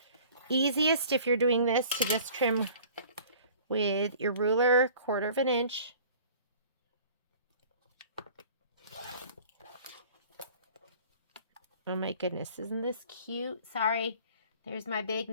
Easiest if you're doing this to just trim with your ruler 1/4 inch. Oh my goodness, isn't this cute? Sorry, there's my big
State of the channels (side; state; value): both; inverted; correlation -0.48